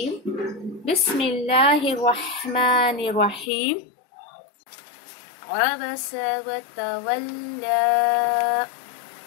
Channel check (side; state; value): right; drops out; at 3.5 s